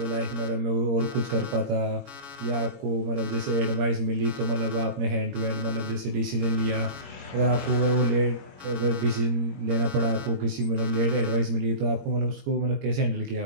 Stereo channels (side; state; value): left; late; 21 ms